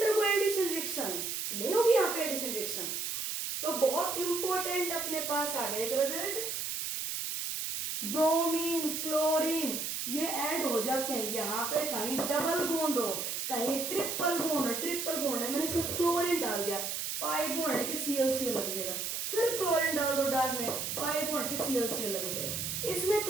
addition reaction, नहीं होगी यहाँ पे एडिशन रिएक्शन। तो बहुत इंपॉर्टेंट अपने पास आ गया एक रिजल्ट, ब्रोमीन क्लोरीन ये ऐड हो जाते हैं, यहाँ पे कहीं डबल बॉन्ड हो, कहीं ट्रिपल बॉन्ड हो, ट्रिपल बॉन्ड है, मैंने इसमें क्लोरीन डाल दिया, पाई बॉन्ड के ClCl लग जाएगा, फिर क्लोरीन डाल दो डार्क में, पाई बॉन्ड के ClCl लग जाएगा, इसमें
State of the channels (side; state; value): right; noise; hiss, 3 dB below the sound